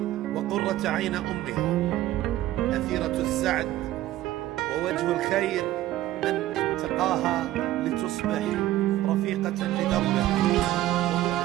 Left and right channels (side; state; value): left; quieter; 14.8 dB